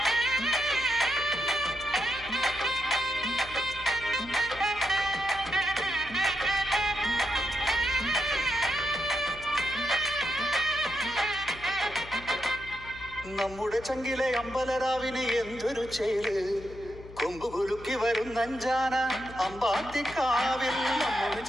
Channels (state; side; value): noise; left; hum, 16 dB below the sound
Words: നമ്മുടെ ചങ്കിലെ അമ്പലരാവിന് എന്തൊരു ചേല് കൊമ്പ് കുലുക്കി വരുന്നഞ്ചാന അമ്പാത്തിക്കാവിൽ. നമ്മുടെ